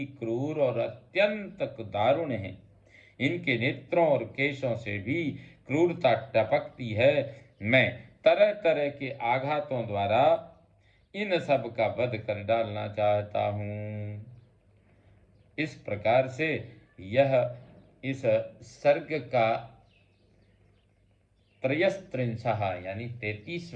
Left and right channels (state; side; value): identical; both; correlation 1.00